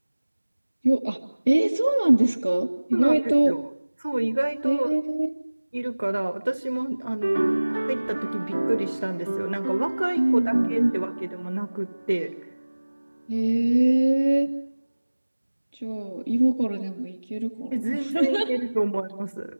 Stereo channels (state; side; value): inverted; both; correlation -1.00